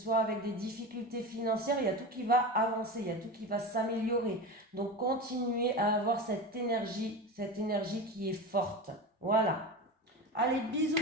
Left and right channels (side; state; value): both; normal; correlation 0.25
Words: avec des difficultés financières, il y a tout qui va avancer, il y a tout qui va s'améliorer. Donc, continuez à avoir cette énergie qui est forte. Voilà. Allez, bisous